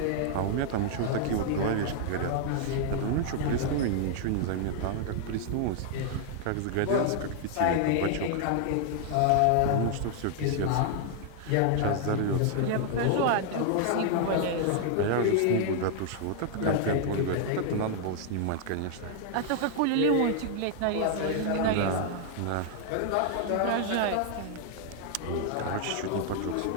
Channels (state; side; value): different; both; correlation -0.01